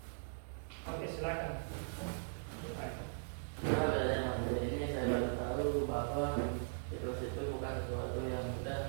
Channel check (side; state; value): left; silent; digital silence